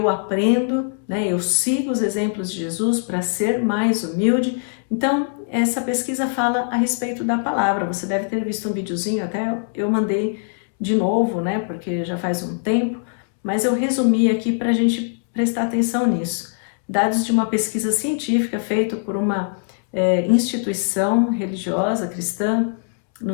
aprendo, né? Eu sigo os exemplos de Jesus para ser mais humilde. Então, essa pesquisa fala a respeito da palavra. Você deve ter visto um videozinho, até eu mandei de novo, né? Porque já faz um tempo, mas eu resumi aqui para a gente prestar atenção nisso. Dados de uma pesquisa científica feita por uma instituição religiosa cristã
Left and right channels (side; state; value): right; silent; 65 dB below the other